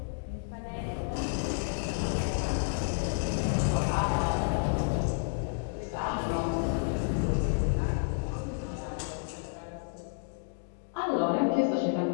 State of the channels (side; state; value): right; silent; digital silence